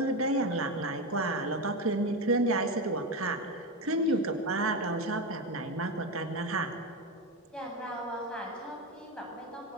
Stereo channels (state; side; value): normal; both; correlation 0.15